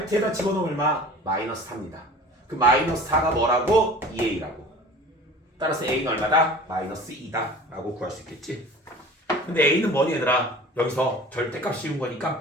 집어넣으면 얼마? 마이너스 4입니다. 그 마이너스 4가 뭐라고? 2a라고. 따라서 a는 얼마다? 마이너스 2다 라고 구할 수 있겠지. 근데 a는 뭐니 얘들아? 여기서 절대값 씌운 거니까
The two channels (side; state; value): both; normal; correlation 0.42